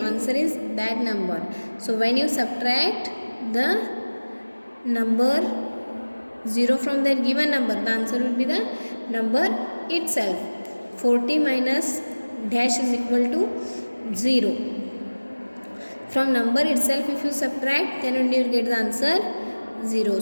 answer is that number. So when you subtract the number 0 from that given number, the answer will be the number itself. 40 minus dash is equal to 0. From number itself if you subtract, then only you will get the answer 0.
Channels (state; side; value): inverted; both; correlation -1.00